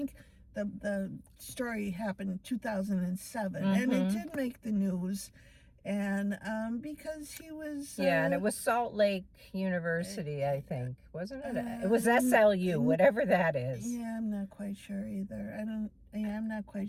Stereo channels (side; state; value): both; identical; correlation 1.00